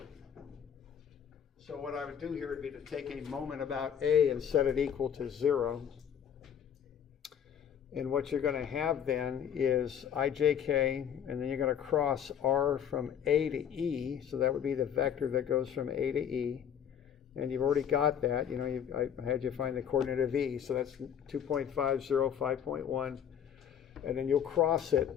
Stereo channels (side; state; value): right; quieter; 8.7 dB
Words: So what I would do here would be to take a moment about A and set it equal to 0. And what you're going to have then is IJK, and then you're going to cross R from A to E. So that would be the vector that goes from A to E. And you've already got that. You know, I had you find the coordinate of E. So that's 2.50, 5.1. And then you'll cross